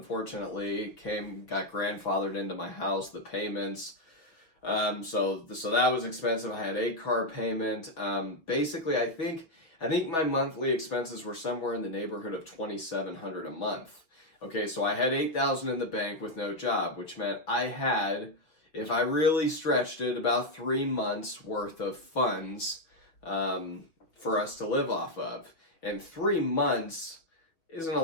got grandfathered into my house, the payments. So that was expensive. I had a car payment. Basically, I think my monthly expenses were somewhere in the neighborhood of $2,700 a month. Okay, so I had $8,000 in the bank with no job, which meant I had, if I really stretched it, about 3 months worth of funds for us to live off of. And 3 months isn't a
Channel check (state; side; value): late; right; 5.9 ms